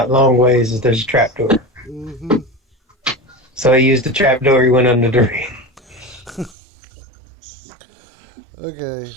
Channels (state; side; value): drops out; left; at 6.6 s